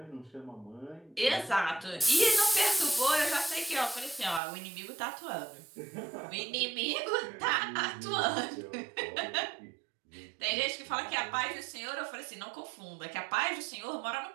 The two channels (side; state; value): left; drops out; at 4.4 s